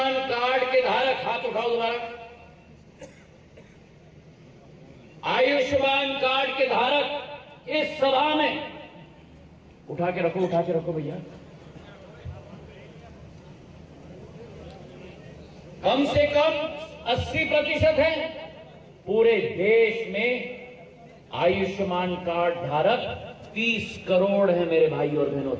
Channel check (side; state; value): both; identical; correlation 1.00